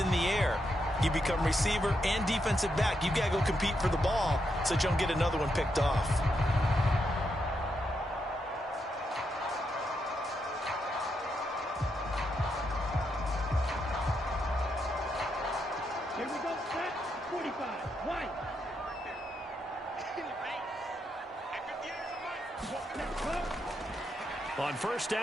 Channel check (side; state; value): both; normal; correlation 0.81